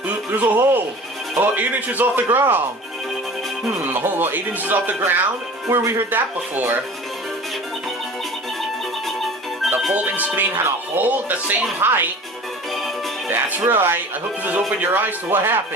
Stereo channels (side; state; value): both; normal; correlation 0.41